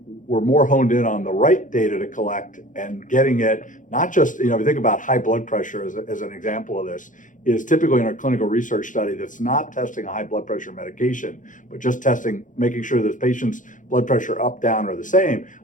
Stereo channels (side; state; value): right; late; 0.37 ms